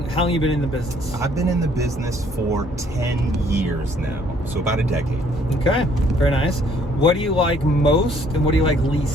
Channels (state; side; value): normal; both; correlation 0.63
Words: you been in the business? I've been in the business for 10 years now, so about a decade. Okay, very nice. What do you like most and what do you like